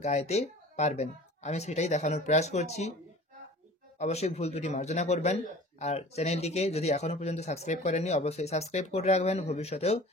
গাইতে পারবেন। আমি সেটাই দেখানোর প্রয়াস করছি। অবশ্যই ভুল ত্রুটি মার্জনা করবেন। আর চ্যানেলটিকে যদি এখনো পর্যন্ত সাবস্ক্রাইব করেননি, অবশ্যই সাবস্ক্রাইব করে রাখবেন। ভবিষ্যতেও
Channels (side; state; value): both; normal; correlation 0.43